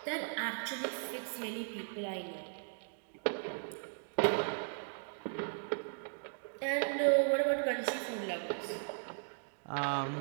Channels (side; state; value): left; silent; digital silence